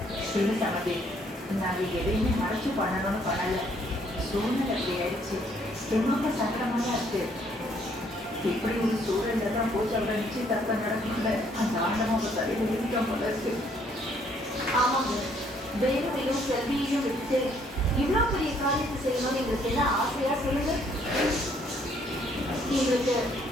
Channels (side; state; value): both; normal; correlation 0.66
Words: சின்ன சமதி, நாங்கள் எதையுமே மறைச்சு பண்ணணும்னு பண்ணலை. சூழ்நிலை அப்படி ஆயிடுச்சு. ரொம்ப சங்கடமாக தான் இருக்கு. இப்படி ஒரு சூழல்ல தான் போச்சு அவரை நிச்சயதார்த்தம் நடக்கல. அந்த ஆண்டவன் அவங்க தலையில் எழுதிட்டோம் போல இருக்கு. ஆமாங்க, வேணுவையும் செல்வியையும் விட்டு இவ்வளோ பெரிய காரியத்தை செய்யணும்னு எங்களுக்கு என்ன ஆசையா சொல்லுங்க. எங்களுக்கு